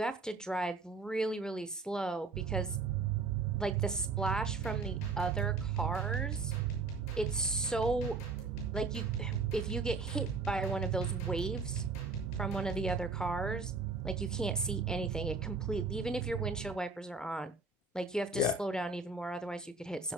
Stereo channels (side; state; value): left; quieter; 4.0 dB